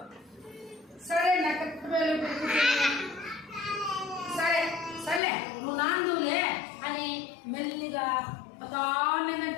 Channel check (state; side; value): drops out; right; at 5.2 s